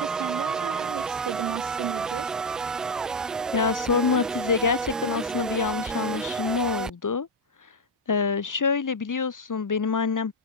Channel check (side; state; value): both; normal; correlation 0.04